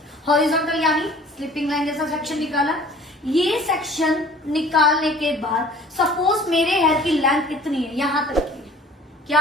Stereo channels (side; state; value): both; normal; correlation 0.49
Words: हॉरिजॉन्टल यानी स्लिपिंग लाइन जैसा सेक्शन निकाला। ये सेक्शन निकालने के बाद सपोज मेरे हेयर की लेंथ कितनी है, यहां तक की क्या